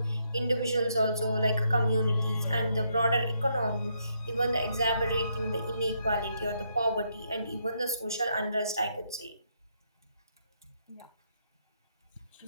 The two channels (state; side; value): inverted; both; correlation -0.76